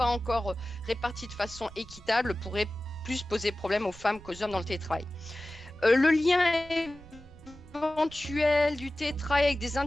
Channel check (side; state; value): right; noise; rumble, 19 dB below the sound